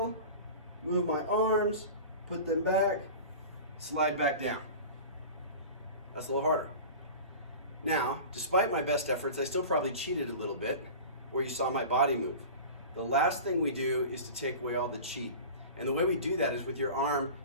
move my arms, put them back, slide back down. That's a little harder. Now, despite my best efforts, I still probably cheated a little bit where you saw my body move. The last thing we do is to take away all the cheat. And the way we do that is with your arm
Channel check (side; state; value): both; inverted; correlation -0.35